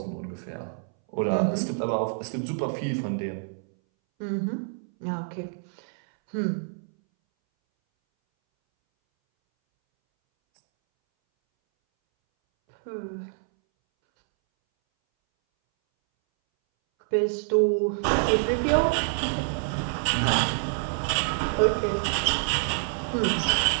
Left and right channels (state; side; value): silent; left; 60 dB below the other